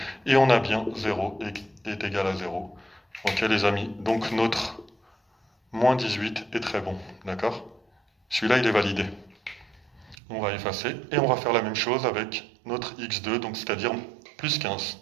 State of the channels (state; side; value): drops out; left; at 10.2 s